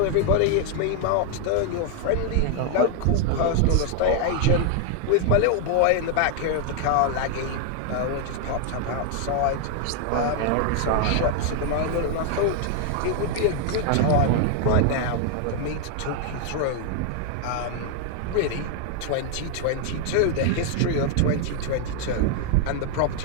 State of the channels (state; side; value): different; both; correlation 0.00